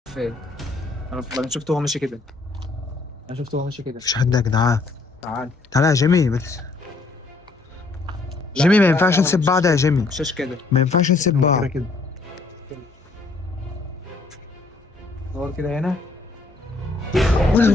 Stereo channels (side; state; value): right; quieter; 3.6 dB